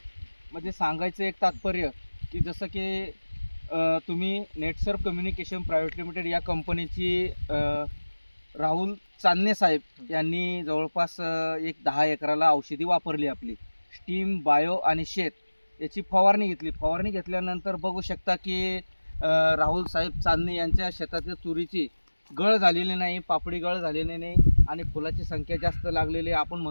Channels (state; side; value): inverted; both; correlation -1.00